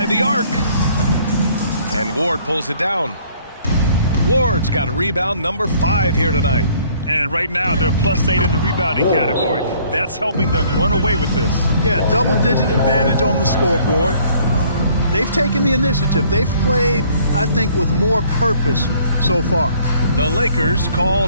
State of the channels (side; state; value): both; inverted; correlation -0.60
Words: the arc. And Ward pulls it down. Ward's got a rebound number 5 here tonight. And right now, they're +8 in the rebounding category. That's helping them run away with this. Yeah, double-digit advantage on the scoreboard. They've taken the initiative. They've played, I think, with more purpose so far. The Lakers